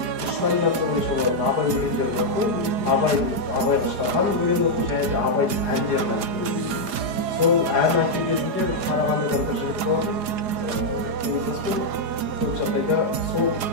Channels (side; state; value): left; late; 4.8 ms